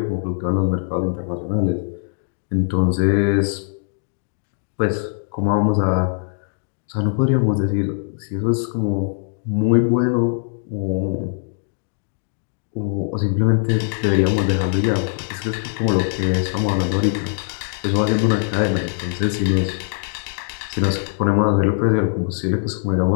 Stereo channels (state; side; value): silent; right; digital silence